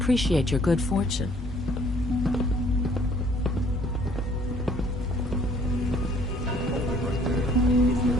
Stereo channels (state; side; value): normal; both; correlation 0.59